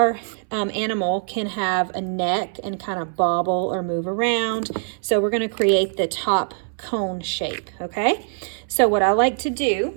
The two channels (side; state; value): left; silent; 64 dB below the other